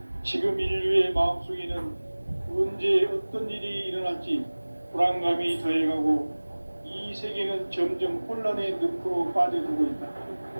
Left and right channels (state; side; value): inverted; both; correlation -1.00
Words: 지금 인류의 마음속에는 언제 어떤 일이 일어날지 불안감이 더해가고 이 세계는 점점 혼란의 늪으로 빠져들고 있다.